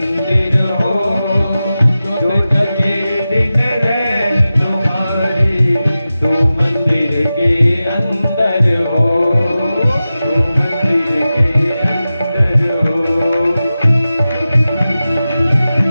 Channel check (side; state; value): both; inverted; correlation -0.94